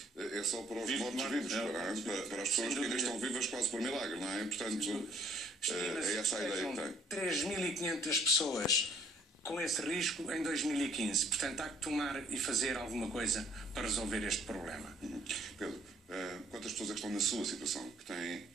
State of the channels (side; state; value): both; normal; correlation 0.62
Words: é só para os mortos-vivos, para as pessoas que ainda estão vivas quase por milagre, não é? Portanto, é essa a ideia que tem. 3.500 pessoas com esse risco em 2015. Portanto, há que tomar e fazer alguma coisa para resolver este problema. Pedro, quantas pessoas é que estão na sua situação, que têm